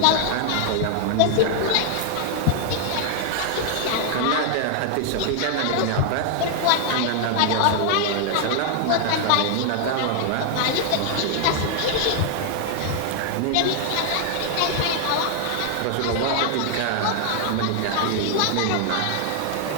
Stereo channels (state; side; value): different; both; correlation 0.00